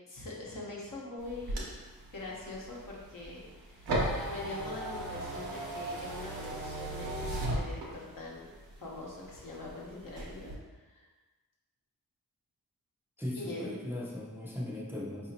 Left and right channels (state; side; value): normal; both; correlation 0.31